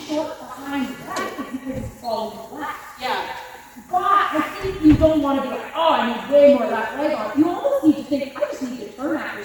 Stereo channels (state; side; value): identical; both; correlation 1.00